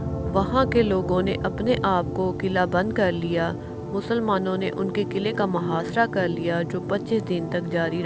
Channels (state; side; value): identical; both; correlation 1.00